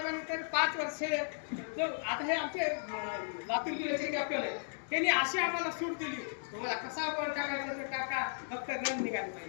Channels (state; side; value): silent; right; digital silence